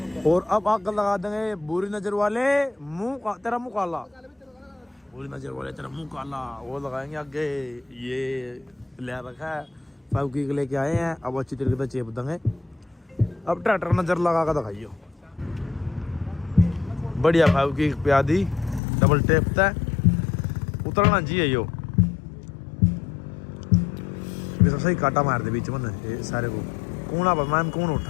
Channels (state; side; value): drops out; right; at 18.8 s